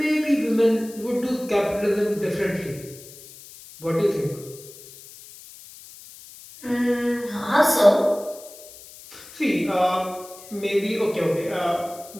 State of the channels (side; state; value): left; noise; hiss, 18 dB below the sound